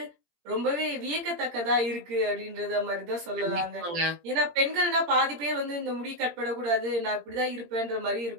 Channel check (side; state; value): left; late; 17 ms